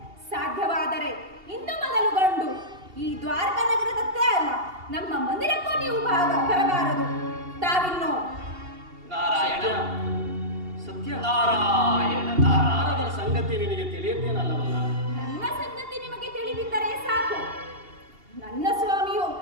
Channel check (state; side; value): late; left; 2.8 ms